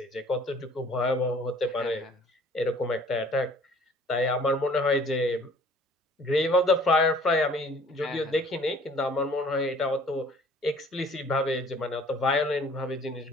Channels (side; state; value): both; normal; correlation 0.54